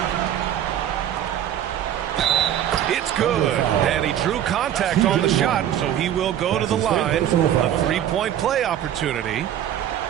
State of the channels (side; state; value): left; quieter; 10.8 dB